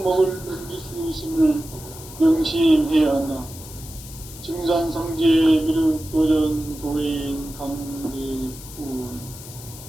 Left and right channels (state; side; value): noise; left; hiss, 15 dB below the sound